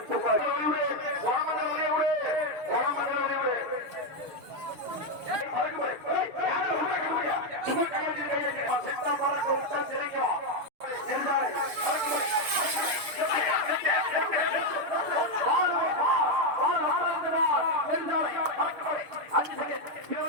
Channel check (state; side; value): late; left; 6.6 ms